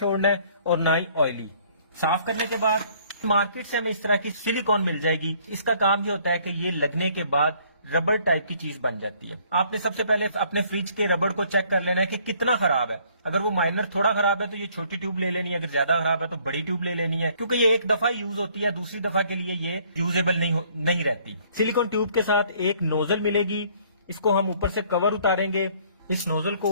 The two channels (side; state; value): both; inverted; correlation -0.61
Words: है और ना ही ऑयली। साफ करने के बाद मार्केट से हमें इस तरह की सिलिकॉन मिल जाएगी। इसका काम ये होता है कि ये लगने के बाद रबड़ टाइप की चीज बन जाती है। आपने सबसे पहले अपने फ्रिज के रबड़ को चेक कर लेना है कि कितना खराब है। अगर वो माइनर थोड़ा खराब है तो ये छोटी ट्यूब ले लेनी है, अगर ज्यादा खराब है तो बड़ी ट्यूब ले लेनी है, क्योंकि ये एक दफा यूज होती है, दूसरी दफा के लिए ये यूजेबल नहीं रहती। सिलिकॉन ट्यूब के साथ एक नोजल मिलेगी, इसको हम ऊपर से कवर उतारेंगे, इस नोजल